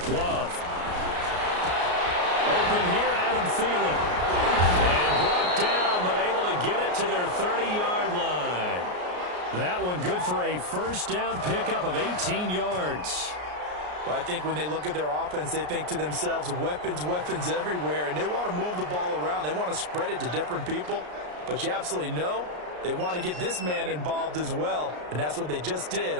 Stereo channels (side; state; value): left; late; 33 ms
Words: Love. Open here, Adam Thielen. And brought down, but able to get it to their 30-yard line. That one good for a 1st down pickup of 18 yards. Well, I think when they look at their offense, they think to themselves, weapons, weapons everywhere, and they want to move the ball around. They want to spread it to different people. But you absolutely know they want to get this man involved as well, and that's what they just did